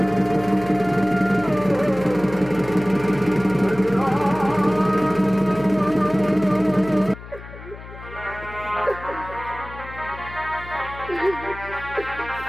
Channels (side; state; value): left; noise; hum, 15 dB below the sound